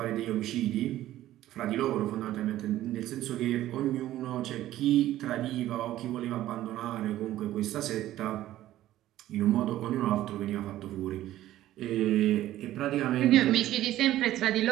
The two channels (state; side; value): quieter; left; 14.1 dB